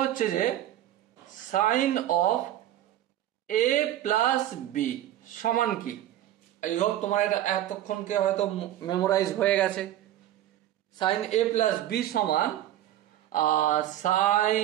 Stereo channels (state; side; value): quieter; left; 12.7 dB